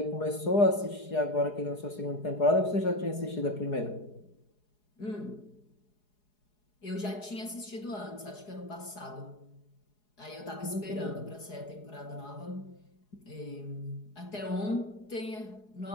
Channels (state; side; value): late; right; 4.8 ms